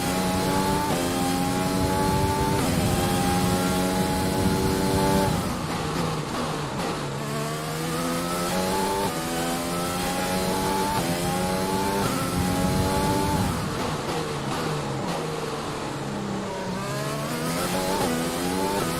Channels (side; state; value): both; identical; correlation 1.00